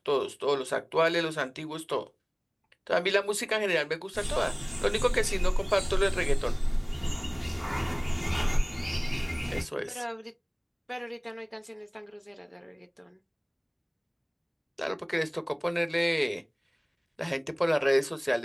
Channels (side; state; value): both; identical; correlation 1.00